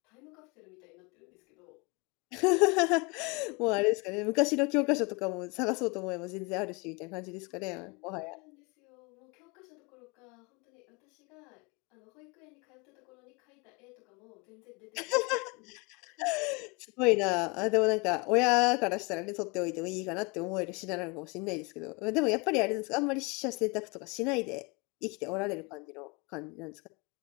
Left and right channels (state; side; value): quieter; right; 28.0 dB